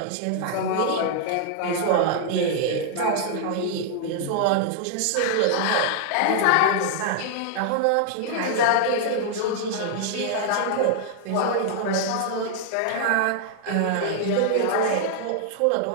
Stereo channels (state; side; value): different; both; correlation 0.00